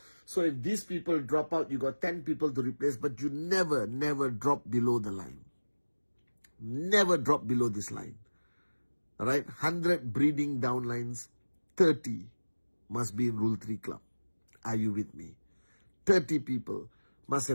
So if these people drop out, you got 10 people to replace. But you never drop below the line. Never drop below this line. All right, 100 breeding downlines, 30 must be in Rule 3 club. Are you with me? 30 people must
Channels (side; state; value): both; inverted; correlation -1.00